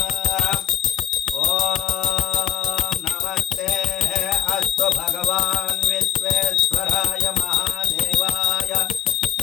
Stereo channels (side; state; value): right; quieter; 10.4 dB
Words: ఓం నమస్తే అస్తు భగవాన్ విశ్వేశ్వరాయ మహాదేవాయ